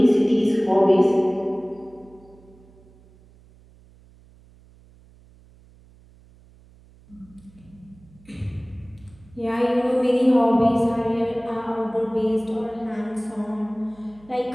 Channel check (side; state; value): right; noise; hum, 26 dB below the sound